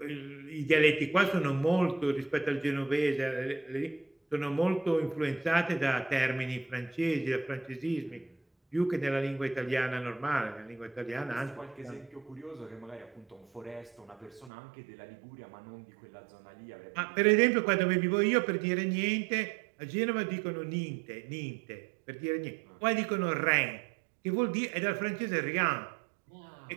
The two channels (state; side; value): drops out; left; at 14.5 s